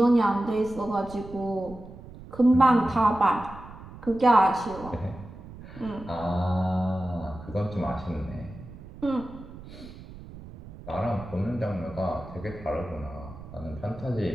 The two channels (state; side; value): noise; right; rumble, 16 dB below the sound